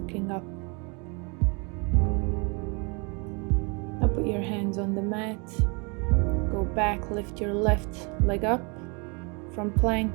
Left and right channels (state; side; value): quieter; left; 32.1 dB